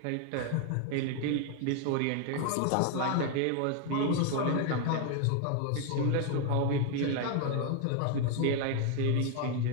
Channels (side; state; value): both; different; correlation 0.01